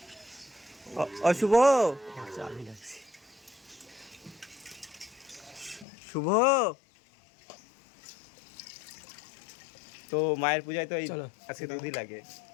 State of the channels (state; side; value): drops out; right; at 5.9 s